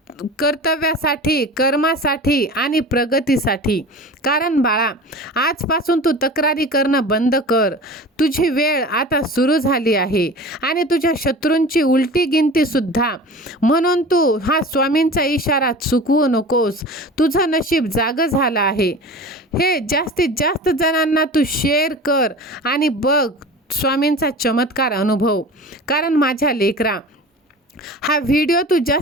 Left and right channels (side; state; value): both; normal; correlation 0.36